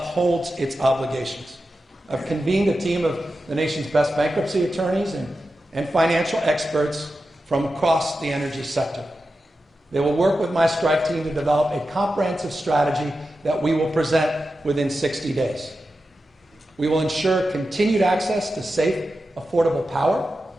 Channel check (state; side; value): normal; both; correlation 0.91